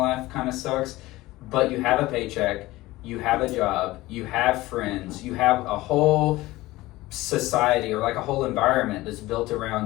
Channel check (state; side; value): quieter; right; 18.5 dB